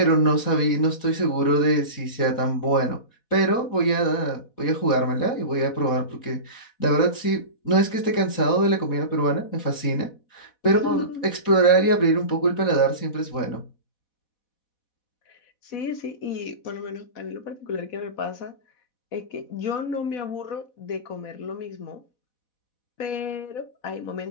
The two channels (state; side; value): late; right; 4.1 ms